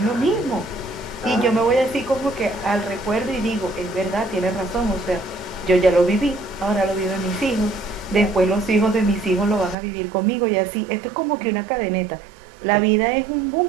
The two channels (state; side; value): drops out; left; at 9.8 s